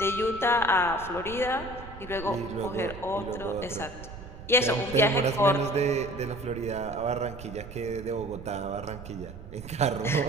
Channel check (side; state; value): right; noise; rumble, 14 dB below the sound